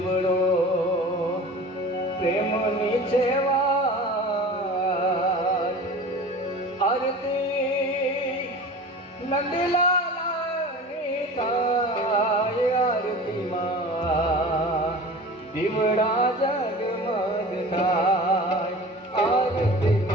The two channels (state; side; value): normal; both; correlation 0.38